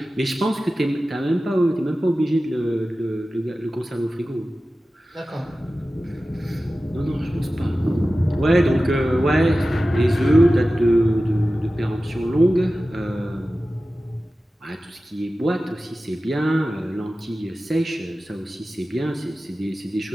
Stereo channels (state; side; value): normal; both; correlation 0.95